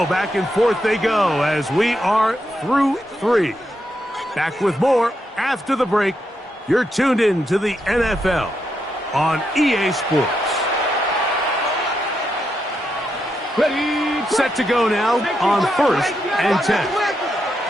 back and forth they go as we are through 3. Back with more after the break. You're tuned in to the NFL on EA Sports. Ready. Set to go now on first and 10.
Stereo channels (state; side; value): normal; both; correlation 0.82